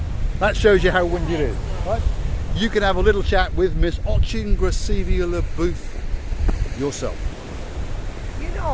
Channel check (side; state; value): both; identical; correlation 1.00